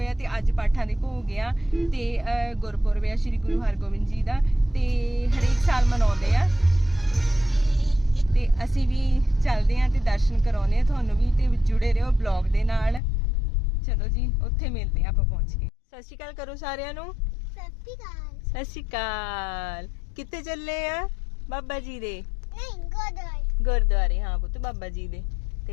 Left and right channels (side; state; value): right; drops out; at 13.0 s